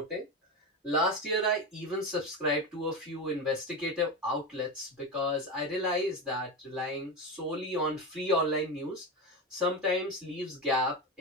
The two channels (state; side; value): normal; both; correlation 0.19